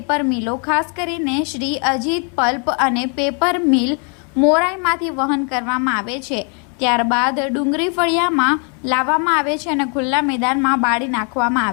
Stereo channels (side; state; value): right; quieter; 38.3 dB